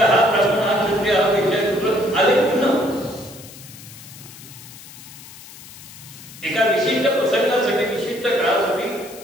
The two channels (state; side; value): noise; left; hiss, 17 dB below the sound